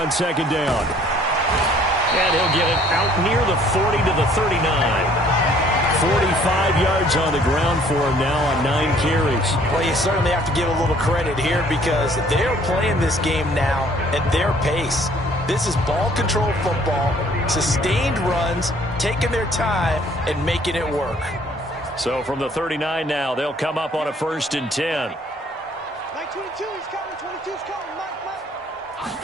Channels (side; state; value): both; normal; correlation 0.59